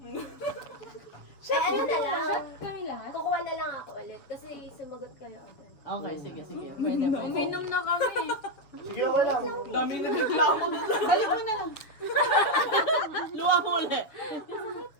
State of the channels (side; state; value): right; late; 7.1 ms